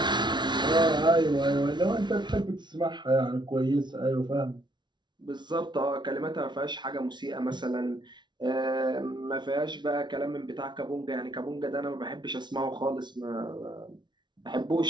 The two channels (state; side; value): late; left; 0.21 ms